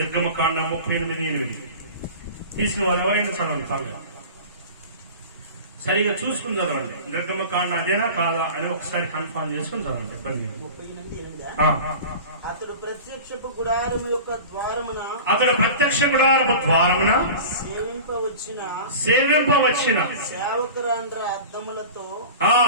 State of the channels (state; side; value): inverted; both; correlation -0.35